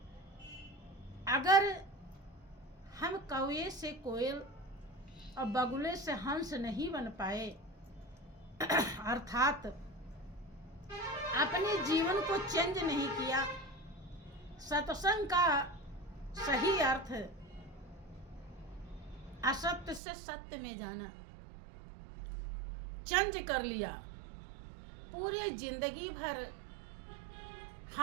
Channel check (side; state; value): left; drops out; at 20.0 s